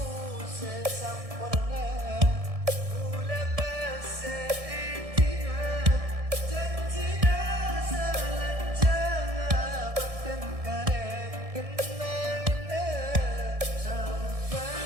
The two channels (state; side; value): late; left; 1.6 ms